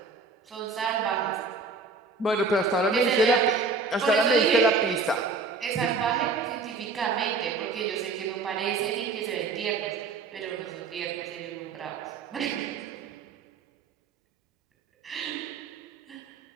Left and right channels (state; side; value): quieter; left; 4.1 dB